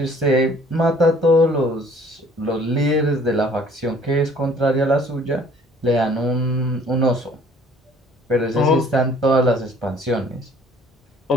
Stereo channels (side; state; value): both; normal; correlation 0.56